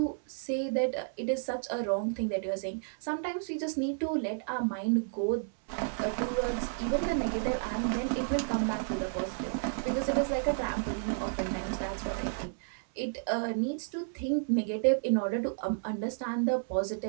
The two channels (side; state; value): left; silent; 57 dB below the other